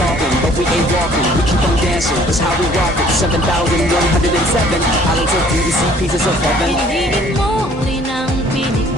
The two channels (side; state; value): both; normal; correlation 0.56